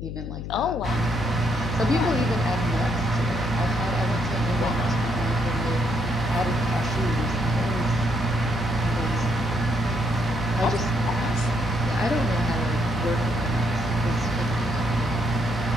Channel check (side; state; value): left; noise; hum, 7 dB below the sound